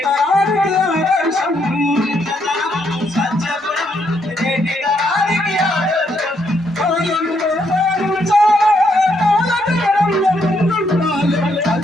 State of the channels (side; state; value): both; normal; correlation 0.75